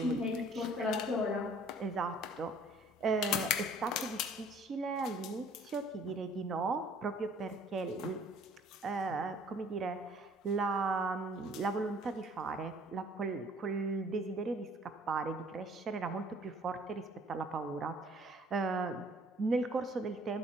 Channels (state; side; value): normal; both; correlation 0.55